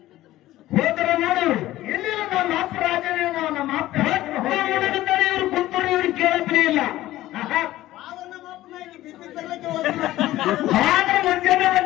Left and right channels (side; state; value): right; quieter; 15.4 dB